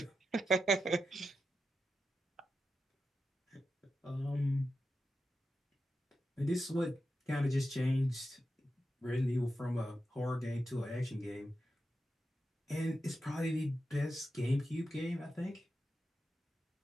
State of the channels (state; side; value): normal; both; correlation 0.89